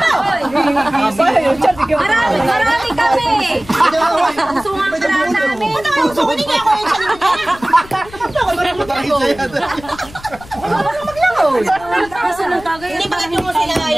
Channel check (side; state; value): left; noise; rumble, 20 dB below the sound